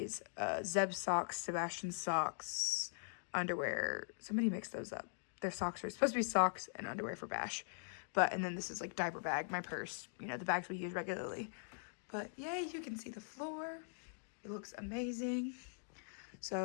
Zeb's socks, Sebastian's socks, underwear. Somebody mixed those up. Their socks are supposed to be socks and underwear for Bash. And then this is like diaper bag, my purse, you know, the bags we use regularly. But yay, you can see the floor. It looks amazing.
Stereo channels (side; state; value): right; silent; digital silence